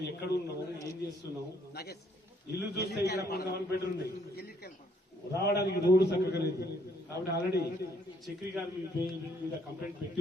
ఎక్కడ ఉన్నాము ఏం చేస్తున్నాము ఇల్లు చూస్తే ఇక్కడ కొంతమంది బెడ్రూమ్ రావడానికి రోడ్డు చక్కగా లేదు కాబట్టి ఆల్రెడీ చక్రి గారు మీద కంప్లైంట్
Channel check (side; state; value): both; normal; correlation 0.67